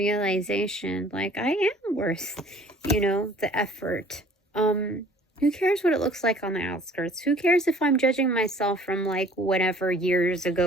like, I am worth, you know, the effort. Who cares what it looks like on the outskirts? Who cares if I'm judging myself from like whatever years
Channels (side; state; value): both; normal; correlation 0.52